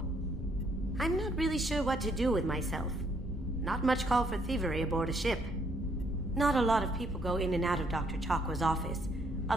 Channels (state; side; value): normal; both; correlation 0.69